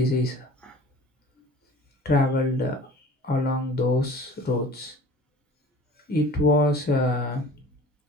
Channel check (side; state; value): both; normal; correlation 0.44